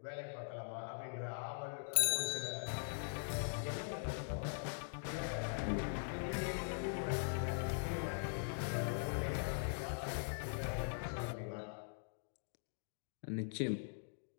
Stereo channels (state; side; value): silent; right; digital silence